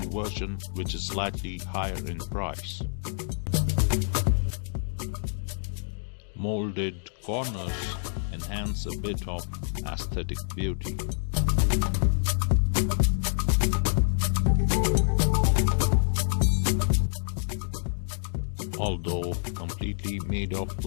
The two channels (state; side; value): silent; right; digital silence